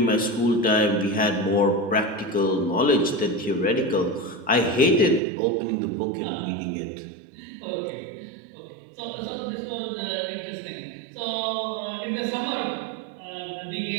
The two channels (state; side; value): drops out; left; at 5.2 s